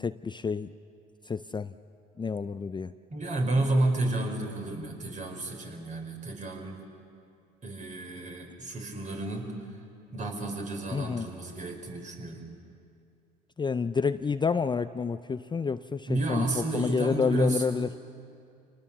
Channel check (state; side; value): normal; both; correlation 0.76